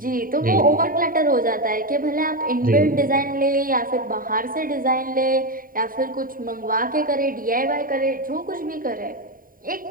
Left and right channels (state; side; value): late; left; 0.41 ms